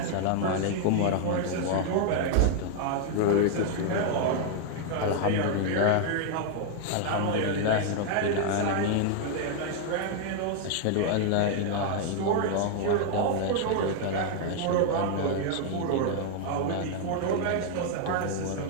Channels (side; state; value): both; different; correlation 0.00